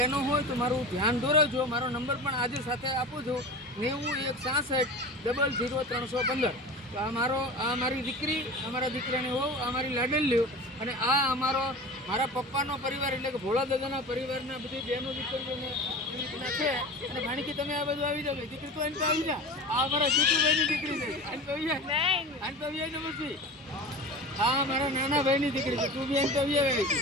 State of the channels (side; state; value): both; normal; correlation 0.33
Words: હોય તો મારું ધ્યાન દોરવજો. મારો નંબર પણ આજે સાથે આપું છું 9166000315. તો આ મારી દીકરી, અમારા દીકરાની હોવ, આ મારી લાડલીઓ અને આ મારા પપ્પાનો પરિવાર એટલે કે ભોળા દાદાના પરિવારના બધી બહેનો દીકરીઓને છે. અને ભાણીકી તમે આ બધું આવી જાવ. દીકરી તો અહીં તો આવી જા. આ અમારા જીતુભાઈની દીકરી છે. અહીં તો આવી જાય ને પછી આ મારા નાના ભાઈની દીકરી છે. તું બી અહીં તો આવી